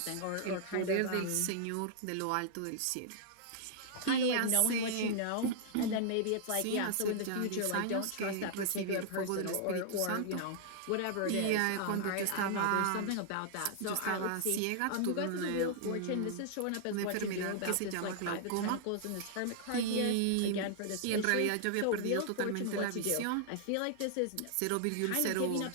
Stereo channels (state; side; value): different; both; correlation -0.01